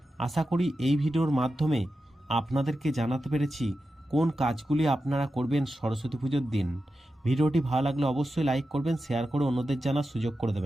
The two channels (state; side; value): normal; both; correlation 0.91